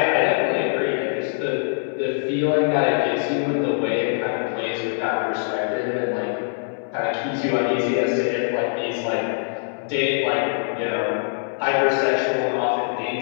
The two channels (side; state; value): right; silent; 63 dB below the other